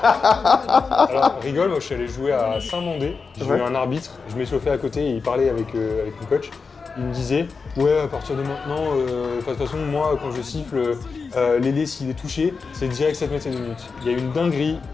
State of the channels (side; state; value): right; quieter; 4.9 dB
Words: Alors, rigole, moi je suis allé jouer à Saint-Mandé. J'ai eu un arbitre, je m'échauffais à côté et il parlait avec mon coach. Il me disait, ouais, à partir de maintenant, de toute façon, moi quand je siffle, l'ailier s'il est touché, c'est direct 7 mètres et 2 minutes. Il y a eu une dinguerie,